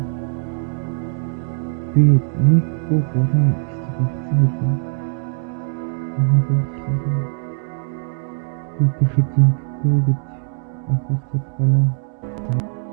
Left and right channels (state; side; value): silent; left; 56 dB below the other